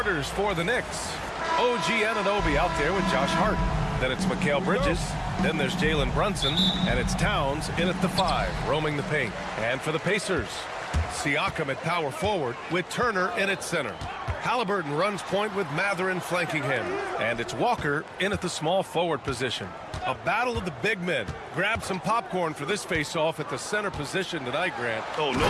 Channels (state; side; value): identical; both; correlation 1.00